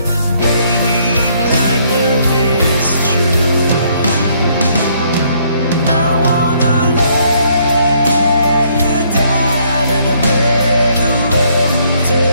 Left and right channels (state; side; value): inverted; both; correlation -0.67